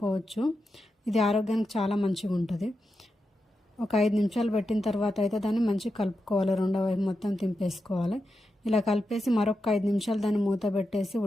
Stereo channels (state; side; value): normal; both; correlation 0.88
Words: ఇది ఆరోగ్యానికి చాలా మంచిగా ఉంటుంది. ఒక 5 నిమిషాలు పెట్టిన తర్వాత అయితే దాన్ని మంచిగా కలుపుకోవాలి. రెండో వైపు మొత్తం తింపేసుకోవాలి. ఇలా కలిపేసి మరొక 5 నిమిషాలు దాన్ని మూత పెట్టేసి